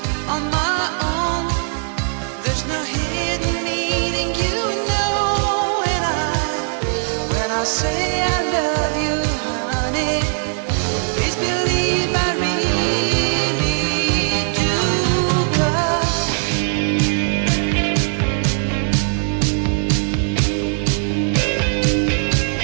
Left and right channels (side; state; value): left; silent; 58 dB below the other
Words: on my own. There's no hidden meaning, you know, and when I say I love you, honey, please believe I really do, 'cause